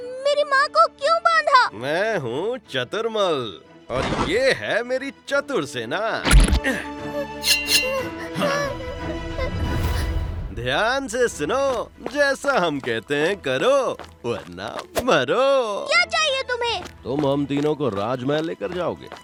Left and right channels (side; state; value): both; identical; correlation 1.00